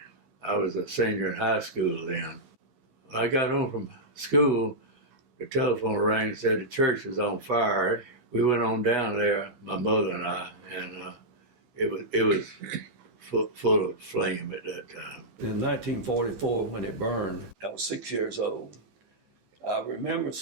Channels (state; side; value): late; left; 15 ms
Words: I was a senior in high school then. When I got home from school, the telephone rang and said the church was on fire. We went on down there, my mother and I, and it was full of flame at that time. In 1944, when it burned, I was 6 years old. I remember